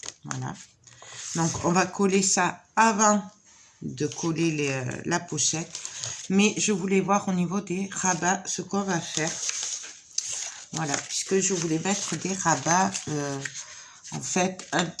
Voilà. Donc, on va coller ça avant de coller la pochette. Mais je voulais voir au niveau des rabats ce qu'on va faire. Voilà. Puisque je voulais mettre des rabats... en fait, un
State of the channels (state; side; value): identical; both; correlation 1.00